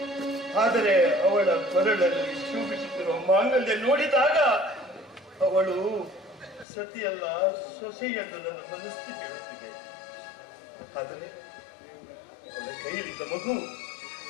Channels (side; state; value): right; drops out; at 6.7 s